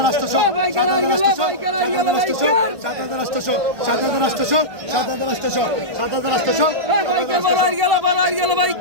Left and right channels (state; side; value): late; left; 1.5 ms